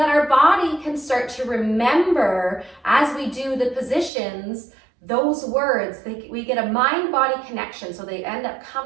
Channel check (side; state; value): left; drops out; at 4.1 s